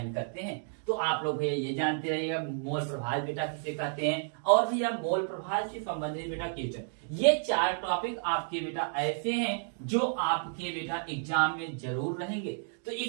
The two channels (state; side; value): silent; left; digital silence